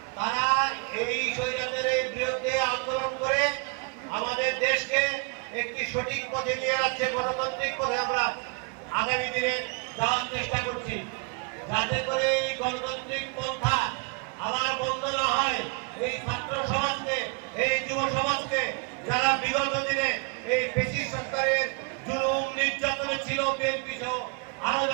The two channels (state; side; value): quieter; left; 34.9 dB